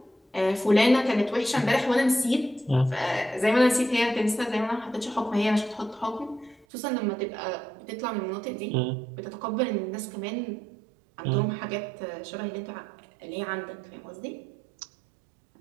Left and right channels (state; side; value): drops out; left; at 6.7 s